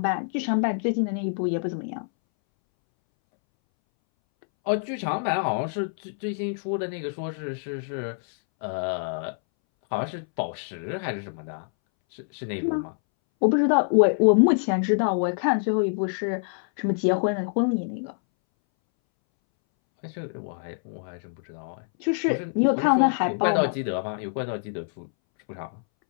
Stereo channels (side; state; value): right; silent; 61 dB below the other